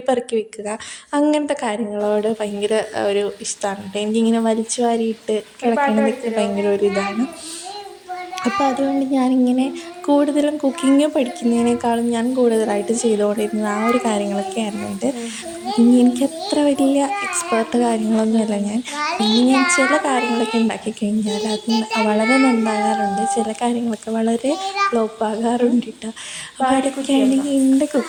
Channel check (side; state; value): both; identical; correlation 1.00